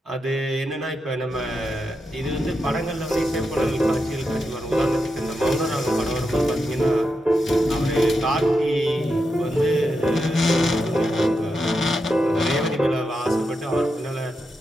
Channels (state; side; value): normal; both; correlation 0.86